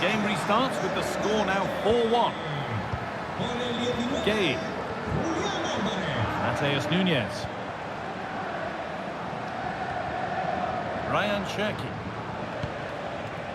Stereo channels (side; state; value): both; identical; correlation 1.00